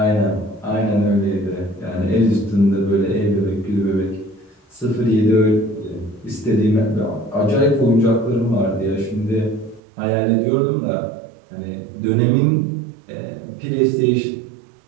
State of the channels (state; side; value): drops out; left; at 9.8 s